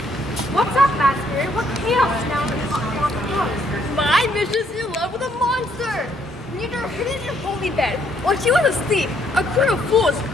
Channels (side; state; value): both; normal; correlation 0.69